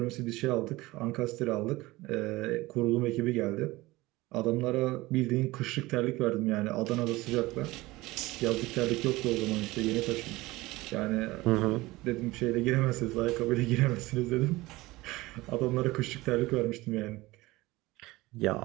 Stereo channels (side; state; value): left; quieter; 20.0 dB